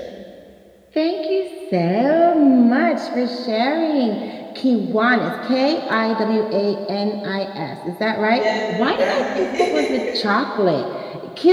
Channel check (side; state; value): both; identical; correlation 1.00